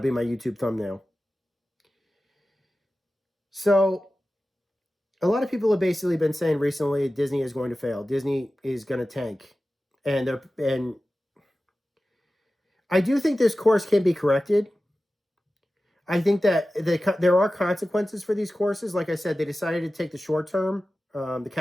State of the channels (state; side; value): normal; both; correlation 0.95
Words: my YouTube thumbnail. So, a lot of people have basically been saying recently Disney is going to fail. Disney is going to tank. And I do think this course can be corrected. I think that there are consequences for these courses. Like I said, they decided to take the short term, the